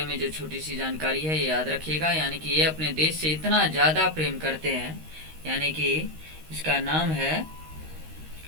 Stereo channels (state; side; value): late; left; 13 ms